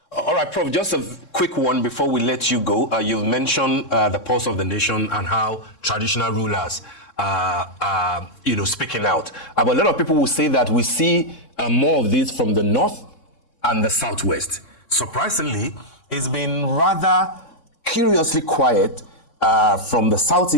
All right, Prof, just a quick one before we let you go. You've mentioned the pulse of the nation and how traditional rulers are speaking out. But a lot of people will say that we see more of this from the north and the southwest. Surprisingly, it's been rather curiously quiet from the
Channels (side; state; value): right; late; 3.7 ms